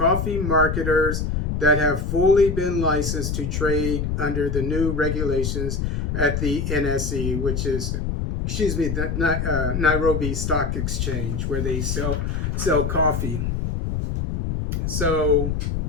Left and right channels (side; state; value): left; noise; rumble, 1 dB below the sound